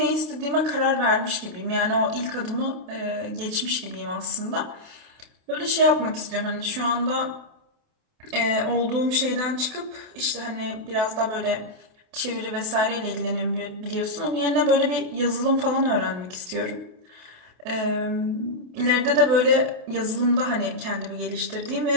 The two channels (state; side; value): late; left; 28 ms